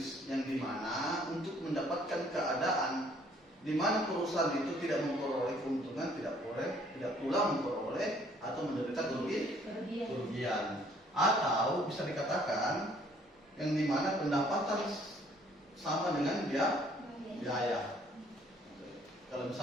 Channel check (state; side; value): normal; both; correlation 0.61